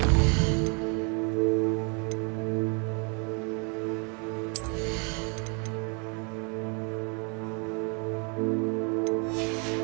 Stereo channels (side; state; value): left; quieter; 36.1 dB